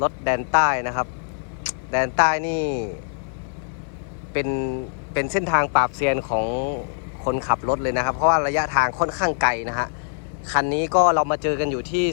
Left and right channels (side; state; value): right; silent; digital silence